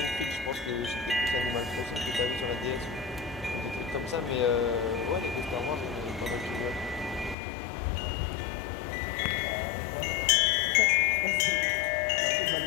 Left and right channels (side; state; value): right; drops out; at 7.4 s